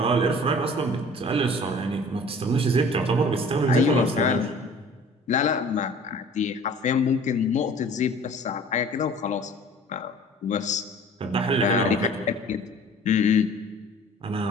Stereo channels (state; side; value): normal; both; correlation 0.47